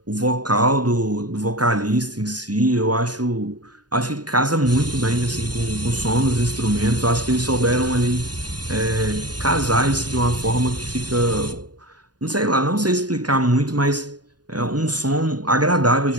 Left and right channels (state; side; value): late; left; 0.69 ms